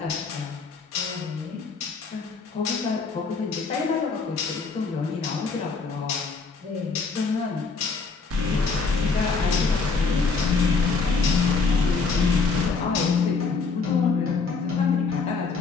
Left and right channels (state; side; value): quieter; right; 4.6 dB